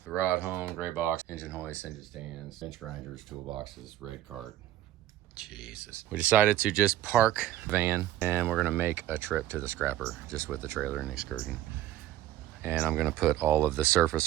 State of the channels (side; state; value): left; quieter; 13.5 dB